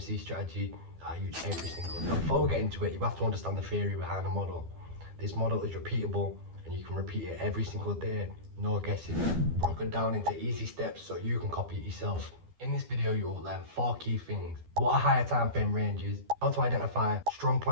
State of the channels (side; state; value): left; late; 12 ms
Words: strategy that I use every single day. Now, before we get into it, you have to understand the theory behind the model. This model is repeatable and you can repeat it every single day, no guessing. Broken down into easy steps so you can copy it yourself. In this video, you will learn 4 key things: what a higher time frame range is, how to identify strong